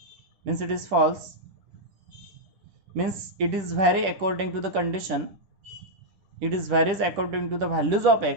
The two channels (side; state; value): left; late; 10 ms